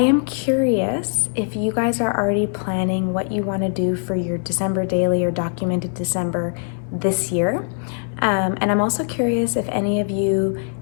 curious if you guys are already planning what you want to do for your December daily or documented December this year. And I'm also curious if any of you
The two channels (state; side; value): silent; right; 65 dB below the other